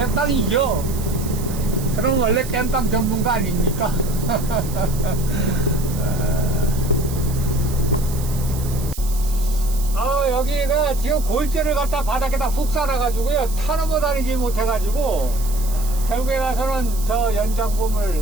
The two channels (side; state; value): right; noise; hiss, 13 dB below the sound